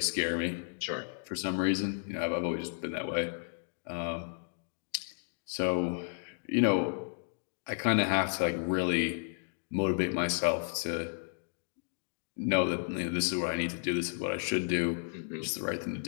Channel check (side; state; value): right; silent; digital silence